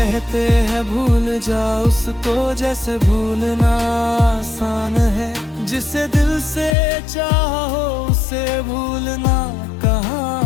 हैं भूल जा उसको, जैसे भूलना आसान है, जिसे दिल से चाहो उसे भूलना कहाँ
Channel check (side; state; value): right; drops out; at 6.8 s